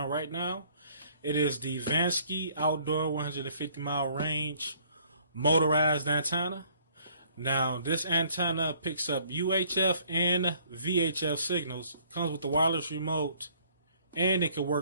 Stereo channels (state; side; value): inverted; both; correlation -0.60